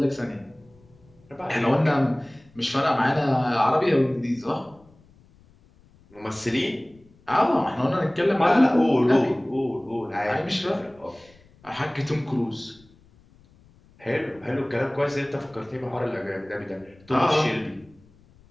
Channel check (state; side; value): noise; left; rumble, 29 dB below the sound